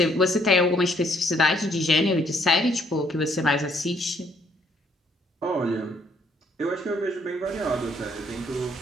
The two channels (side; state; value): both; normal; correlation 0.67